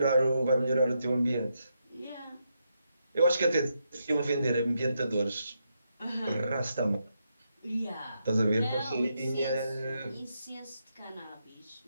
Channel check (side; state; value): both; inverted; correlation -0.82